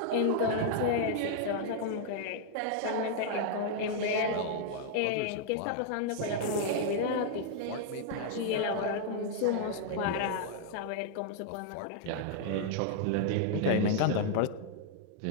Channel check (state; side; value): different; both; correlation 0.00